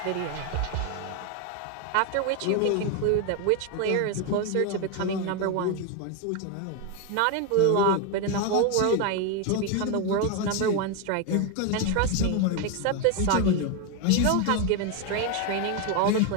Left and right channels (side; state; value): both; different; correlation 0.01